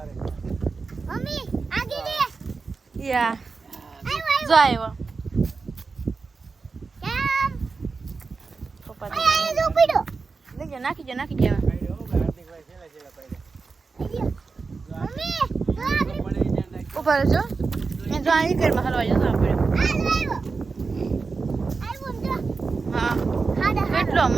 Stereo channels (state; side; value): quieter; left; 4.5 dB